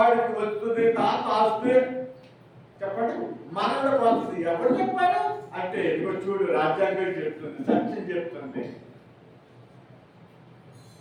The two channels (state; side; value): identical; both; correlation 1.00